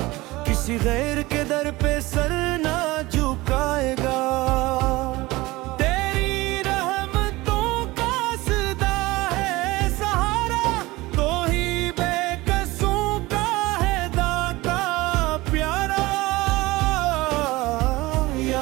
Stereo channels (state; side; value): quieter; left; 20.3 dB